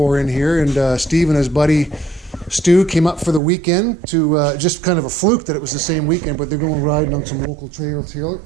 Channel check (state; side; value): drops out; left; at 3.4 s